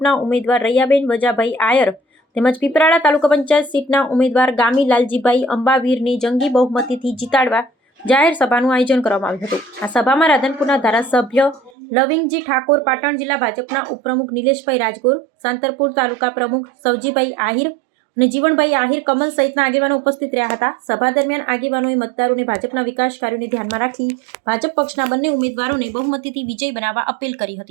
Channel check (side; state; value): left; drops out; at 11.7 s